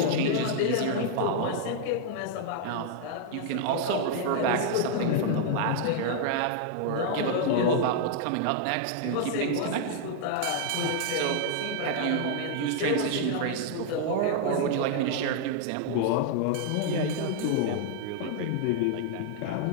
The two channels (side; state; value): both; different; correlation -0.01